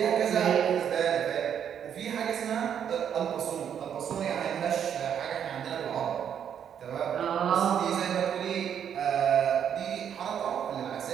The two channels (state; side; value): quieter; left; 8.7 dB